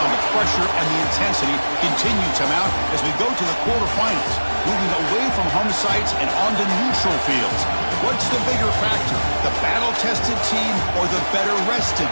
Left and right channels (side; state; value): both; inverted; correlation -1.00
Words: the pressure and the intensity continue to mount as we go to the quarterfinals, moving away from home sites and onto neutral fields. What's the bigger factor, the battle-tested team or the better-rested